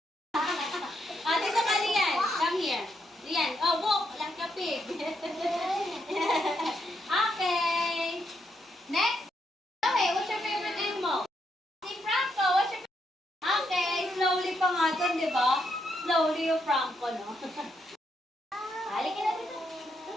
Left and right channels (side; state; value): both; normal; correlation 0.79